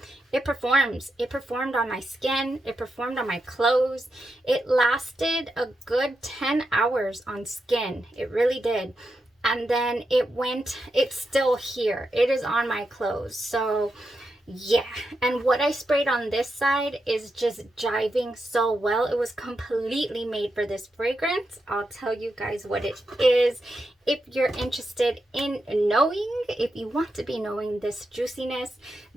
it performs. It performed on my skin. It performed on my clothes. It lasted a good 10 hours on skin. It really did. And then it's still here. It is on my clothes. So yeah, and what I sprayed on this side is just jiving so well. It was completely made for this fragrance. I'll tell you guys what it is if you're interested in knowing. If you want to be knowing this juiciness,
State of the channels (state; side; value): normal; both; correlation 0.86